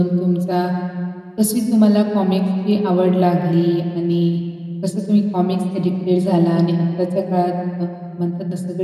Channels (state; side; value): identical; both; correlation 1.00